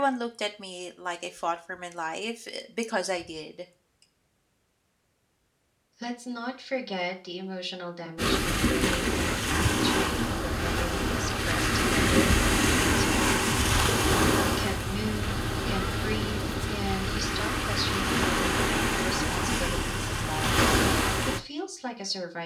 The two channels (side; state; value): both; identical; correlation 1.00